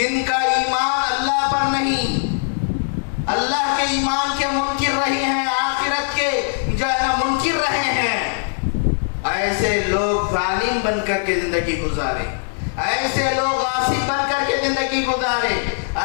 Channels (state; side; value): silent; right; digital silence